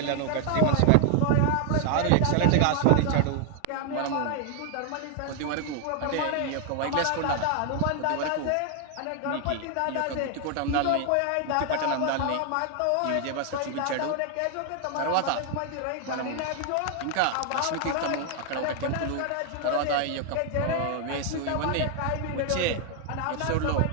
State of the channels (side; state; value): both; different; correlation 0.00